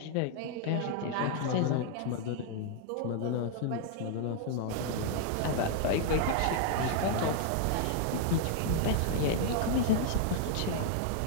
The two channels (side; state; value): both; different; correlation 0.00